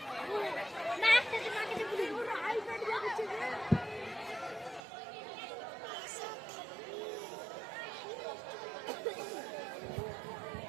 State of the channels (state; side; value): drops out; left; at 4.8 s